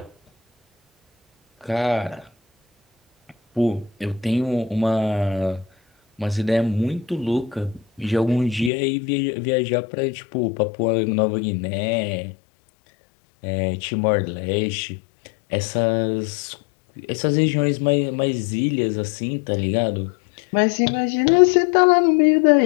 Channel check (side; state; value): right; drops out; at 8.7 s